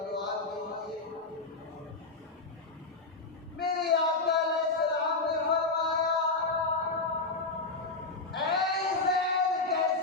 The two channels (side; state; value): right; quieter; 3.6 dB